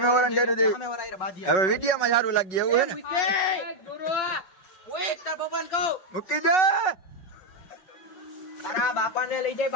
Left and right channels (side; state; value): right; late; 5.4 ms